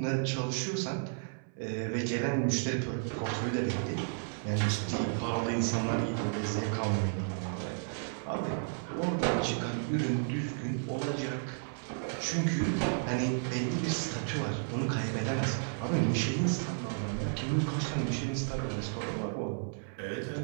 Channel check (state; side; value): silent; left; 56 dB below the other